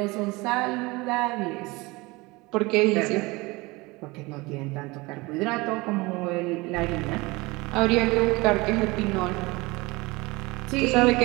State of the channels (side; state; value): left; quieter; 23.4 dB